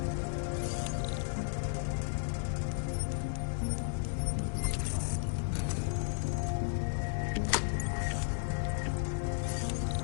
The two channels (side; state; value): right; silent; 55 dB below the other